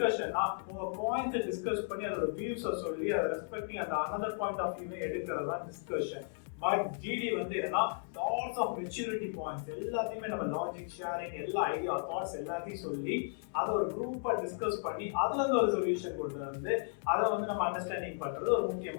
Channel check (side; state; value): right; silent; 55 dB below the other